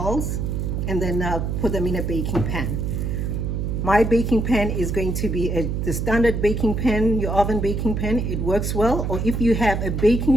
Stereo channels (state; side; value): noise; right; hum, 1 dB below the sound